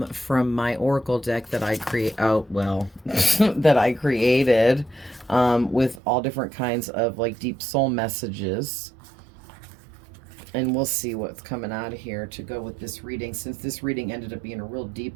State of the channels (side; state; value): left; drops out; at 6.0 s